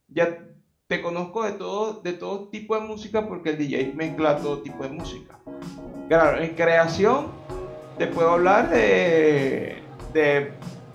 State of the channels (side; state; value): both; identical; correlation 1.00